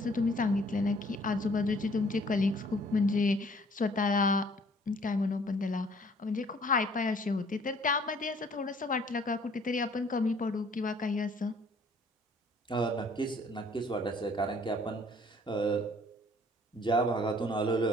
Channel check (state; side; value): normal; both; correlation 0.58